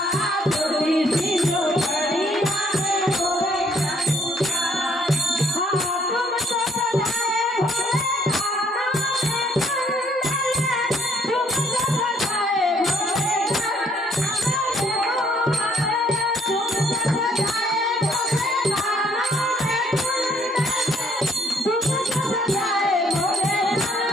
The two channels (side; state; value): both; normal; correlation 0.65